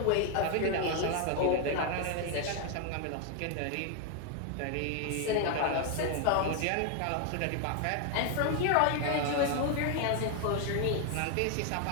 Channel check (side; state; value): both; different; correlation 0.01